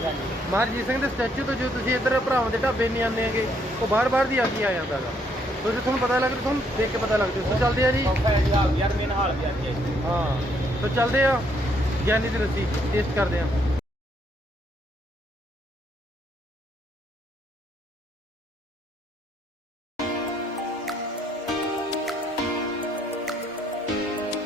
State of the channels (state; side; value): normal; both; correlation 0.70